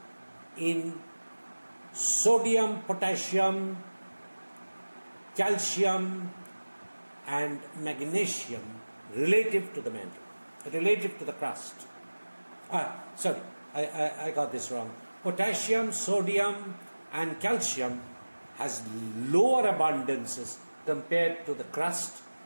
in sodium, potassium, calcium and magnesium relative to the mantle, relative to the crust. Sorry, I got this wrong. Potassium, sodium and calcium has lower abundances compared to the crust,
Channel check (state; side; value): inverted; both; correlation -1.00